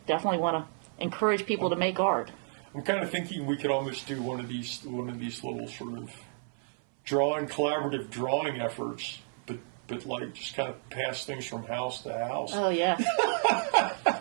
definitely want to encourage people to make art. I'm kind of thinking we could almost do one of these little sort of collaborative drawing efforts, but like just kind of pass things from house to house. Oh yeah,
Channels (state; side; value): silent; left; 57 dB below the other